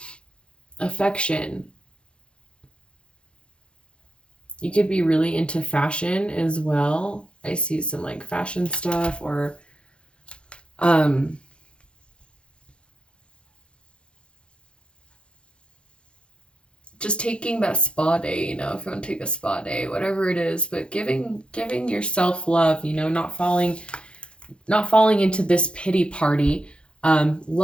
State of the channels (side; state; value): right; late; 0.057 ms